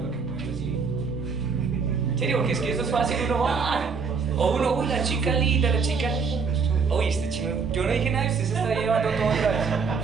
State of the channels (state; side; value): quieter; left; 5.4 dB